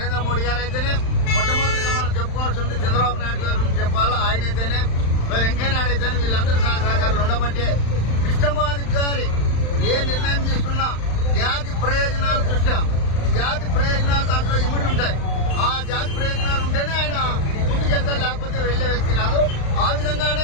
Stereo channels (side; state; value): right; late; 35 ms